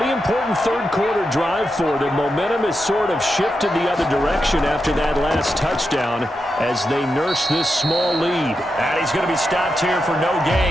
important third-quarter drive for them. Momentum has sort of shifted the other direction after that last touchdown as they nurse this small lead. And he's going to be stopped here for no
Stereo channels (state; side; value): normal; both; correlation 0.87